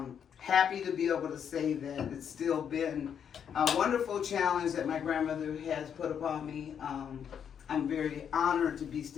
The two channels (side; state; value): right; quieter; 8.1 dB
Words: Happy to be able to say that it's still been a wonderful challenge that my grandmother has put upon me. I'm very honored to be